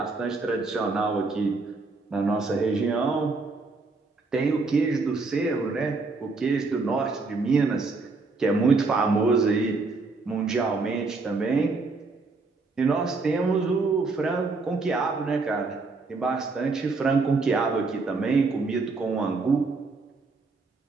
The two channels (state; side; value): quieter; left; 3.9 dB